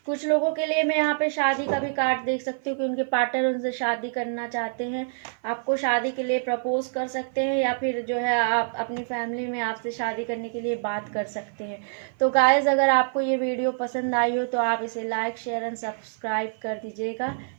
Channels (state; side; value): silent; left; 55 dB below the other